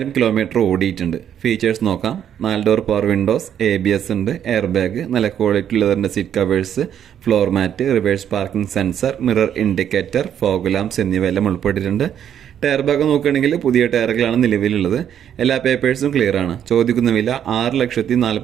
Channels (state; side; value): quieter; left; 9.5 dB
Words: കിലോമീറ്റർ ഓടിയിട്ടുണ്ട്. ഫീച്ചേഴ്സ് നോക്കാം. 4 ഡോർ പവർ വിൻഡോസ്, ABS ഉണ്ട്, എയർ ബാഗ്, നല്ല ക്വാളിറ്റി ലെതറിന്റെ seat covers, floor mat, reverse parking sensor, mirror indicator, fog lamps എന്നിവയെല്ലാം ഉൾപ്പെട്ടിട്ടുണ്ട്. ടയർ ഭാഗം നോക്കുകയാണെങ്കിൽ പുതിയ ടയറുകളാണ് നിലവിലുള്ളത്. എല്ലാ പേപ്പേഴ്സും ക്ലിയർ ആണ്. ചോദിക്കുന്ന വില